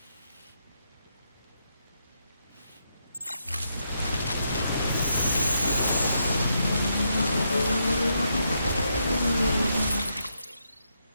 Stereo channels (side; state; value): both; inverted; correlation -0.80